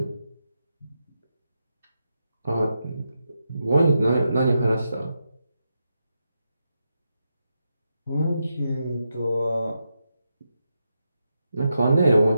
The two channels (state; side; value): inverted; both; correlation -0.86